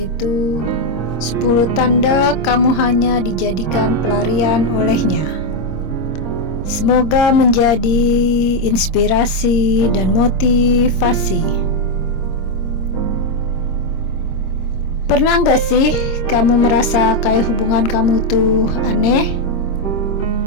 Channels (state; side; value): late; right; 26 ms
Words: 10 tanda kamu hanya dijadikan pelarian olehnya. Semoga menjadi inspirasi dan motivasi. Pernah gak sih kamu merasa kayak hubungan kamu tuh aneh?